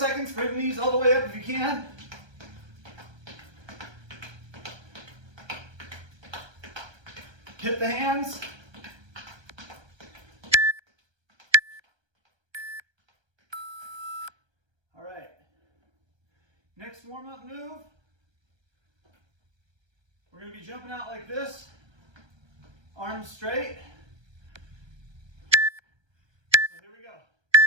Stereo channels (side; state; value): left; late; 1.3 ms